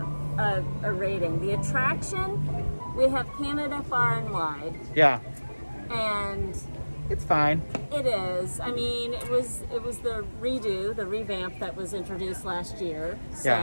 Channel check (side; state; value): both; inverted; correlation -1.00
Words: a rating. The attraction, we have Canada far and wide. Yeah. And... it's fine. It is. I mean, it was the revamp that was introduced last year.